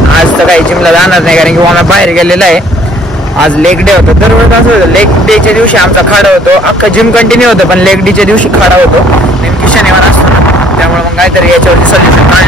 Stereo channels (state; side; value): normal; both; correlation 0.59